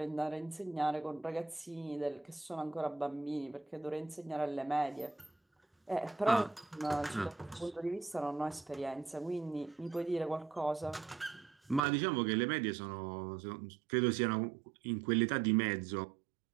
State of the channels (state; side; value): drops out; left; at 11.8 s